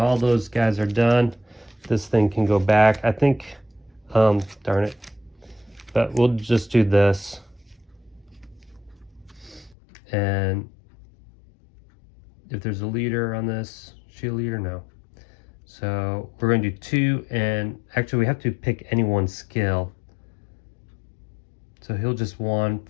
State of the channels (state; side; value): drops out; right; at 9.8 s